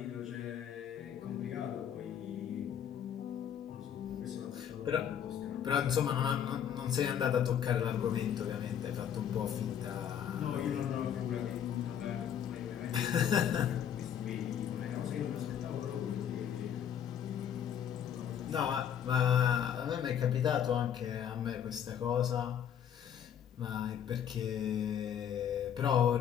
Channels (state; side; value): quieter; right; 9.1 dB